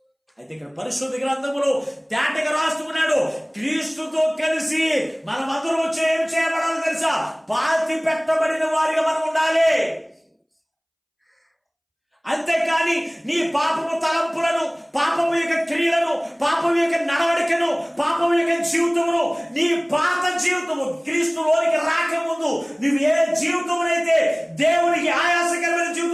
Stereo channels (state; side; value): identical; both; correlation 1.00